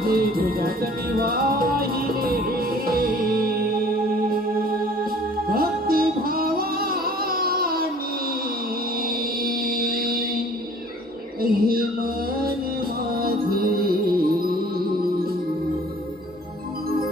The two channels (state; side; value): normal; both; correlation 0.51